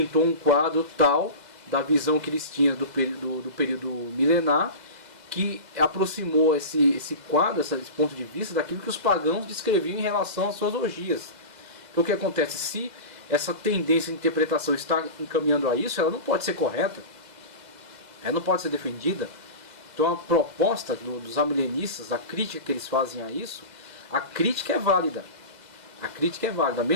um quadro tal da visão que eles tinham do período milenar, que aproximou esse quadro, esse ponto de vista, daquilo que os pagãos descreviam em relação às suas orgias. Então o que acontece? Se essa tendência de interpretação está encaminhando a isso, ela não pode ser correta, ela não pode ser defendida. Então a proposta dos amilenistas, a crítica que eles fazem a isso, a crítica é válida. A crítica é válida,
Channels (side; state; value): left; late; 2.0 ms